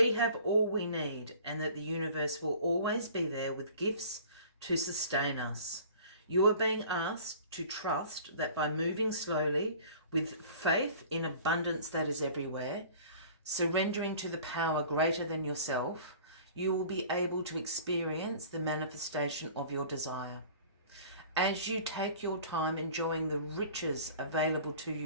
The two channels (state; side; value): inverted; both; correlation -0.46